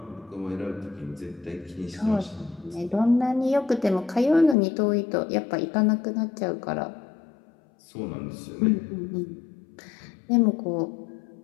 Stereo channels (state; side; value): drops out; right; at 4.5 s